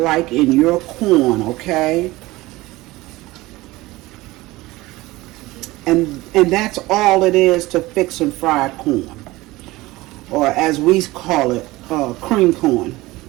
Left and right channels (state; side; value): quieter; left; 19.6 dB